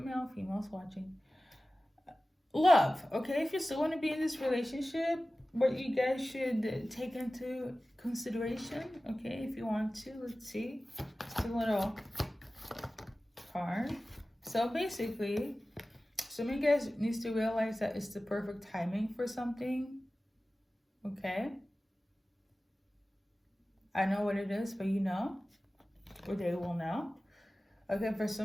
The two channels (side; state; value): both; normal; correlation 0.96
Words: male, females watching. Love, okay? If you still want to be in this relationship, what you guys should take into consideration, okay? If you want to, let's see. It's a little card. So basically, some of you guys needs to realize that it's the perfect timing for something, okay? I know what it is, but you know, or they will know. Okay, for